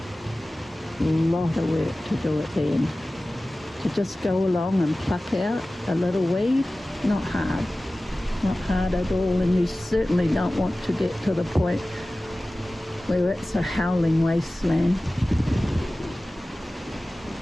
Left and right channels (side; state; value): both; normal; correlation 0.97